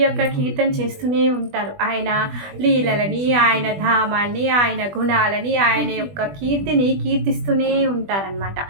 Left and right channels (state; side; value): late; left; 20 ms